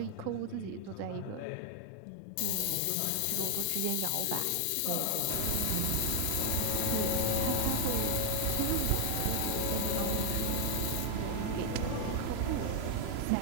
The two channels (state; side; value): different; both; correlation 0.00